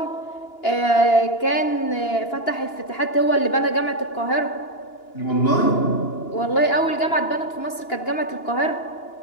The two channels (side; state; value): right; late; 2.9 ms